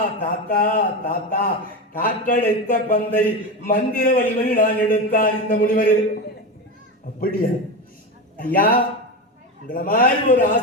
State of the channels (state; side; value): normal; both; correlation 0.19